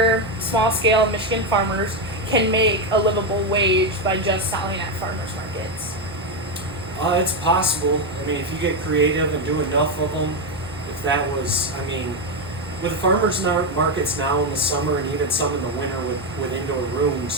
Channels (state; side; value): normal; both; correlation 0.08